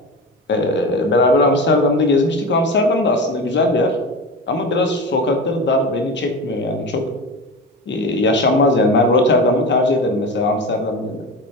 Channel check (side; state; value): both; normal; correlation 0.27